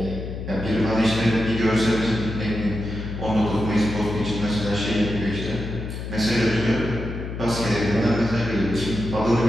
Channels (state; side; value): noise; left; hum, 7 dB below the sound